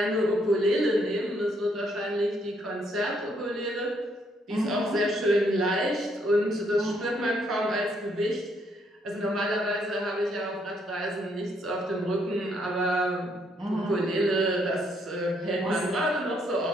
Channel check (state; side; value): normal; both; correlation 0.72